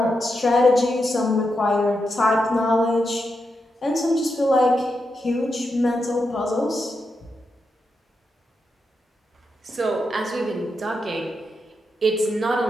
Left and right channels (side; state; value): both; normal; correlation 0.86